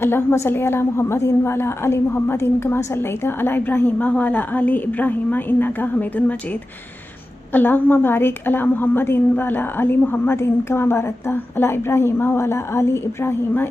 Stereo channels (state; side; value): normal; both; correlation 0.94